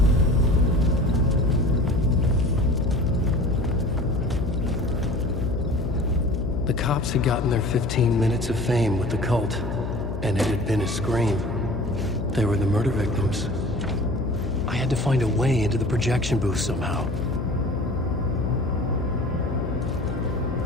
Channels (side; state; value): left; noise; hum, 5 dB below the sound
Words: The cops had gotten their 15 minutes of fame with the cult, and it had been a scream. They were the murder victims. I had to find a way into the projection booth somehow.